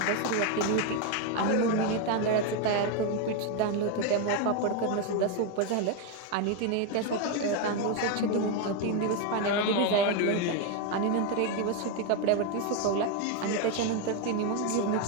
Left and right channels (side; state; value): both; different; correlation 0.02